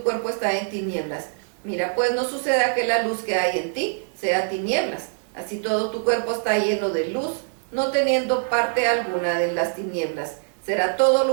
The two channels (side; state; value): left; silent; digital silence